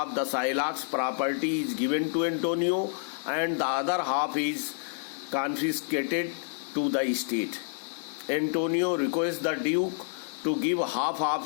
the Shylock's property is given to Antonio and the other half is confiscated to the state. Antonio requests the Duke to give half of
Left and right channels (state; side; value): silent; right; digital silence